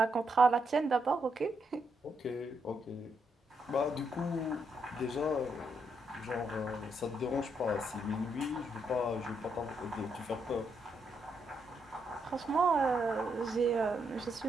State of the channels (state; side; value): normal; both; correlation 0.79